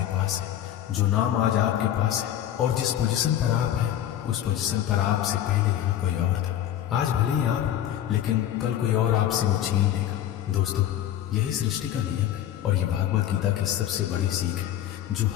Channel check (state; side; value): quieter; right; 11.4 dB